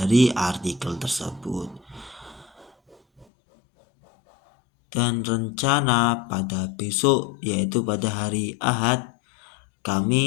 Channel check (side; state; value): right; drops out; at 3.2 s